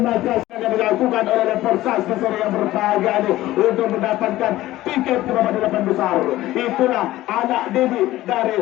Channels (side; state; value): right; quieter; 16.0 dB